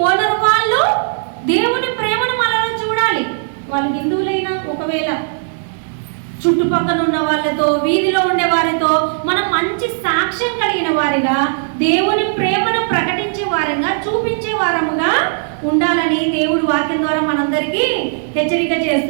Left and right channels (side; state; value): left; silent; digital silence